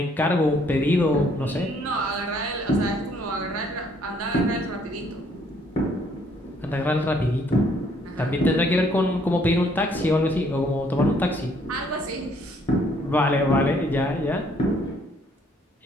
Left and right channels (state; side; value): normal; both; correlation 0.65